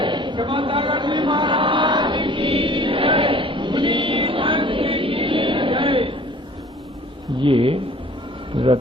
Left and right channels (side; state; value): both; normal; correlation 0.49